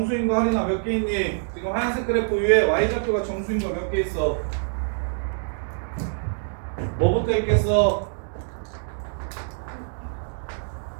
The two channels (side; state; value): left; silent; digital silence